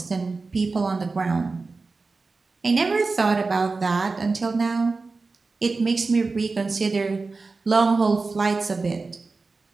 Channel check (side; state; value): left; quieter; 3.9 dB